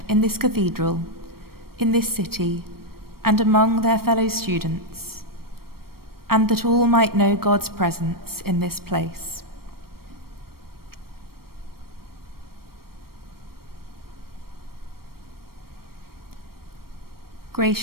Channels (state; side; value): late; left; 0.94 ms